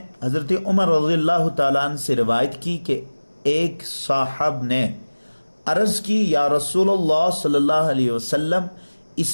حضرت عمر رضی اللہ تعالیٰ عنہ سے روایت کی کہ ایک صاحب نے عرض کی، یا رسول اللہ صلی اللہ علیہ وسلم،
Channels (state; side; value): inverted; both; correlation -1.00